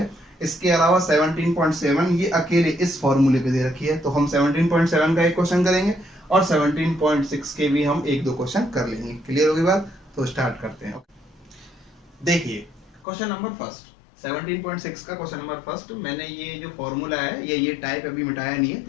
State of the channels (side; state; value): right; drops out; at 13.1 s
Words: इसके अलावा 17.7 ये अकेले इस फॉर्मूले पे दे रखी है, तो हम 17.7 का एक क्वेश्चन करेंगे और 17.6 के भी हम एक दो क्वेश्चन कर लेंगे। क्लियर होगी बात? तो स्टार्ट करते हैं। देखिए क्वेश्चन नंबर फर्स्ट, 17.6 का क्वेश्चन नंबर फर्स्ट। मैंने ये जो फॉर्मूला है ये टाइप अभी मिटाया नहीं है